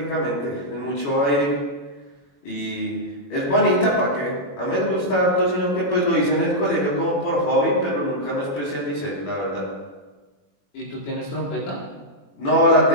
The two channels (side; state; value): right; late; 21 ms